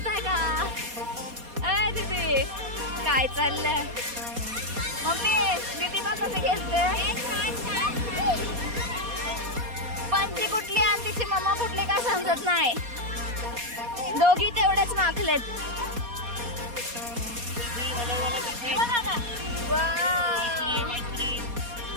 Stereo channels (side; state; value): left; late; 4.2 ms